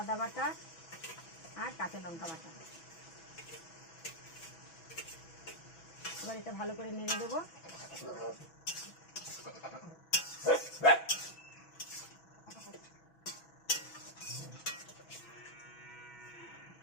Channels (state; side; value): late; right; 6.1 ms